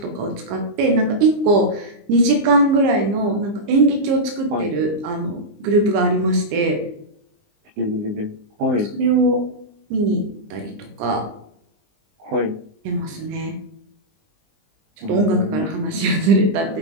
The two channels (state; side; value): late; left; 20 ms